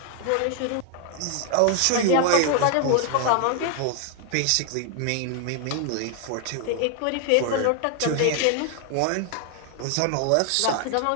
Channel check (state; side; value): different; both; correlation 0.00